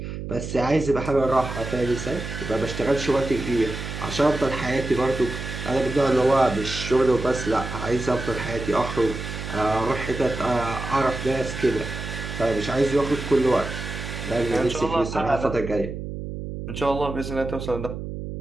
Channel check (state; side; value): noise; right; hum, 7 dB below the sound